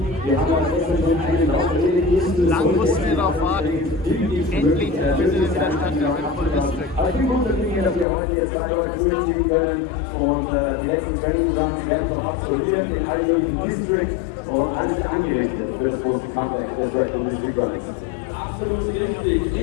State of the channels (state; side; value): drops out; right; at 8.1 s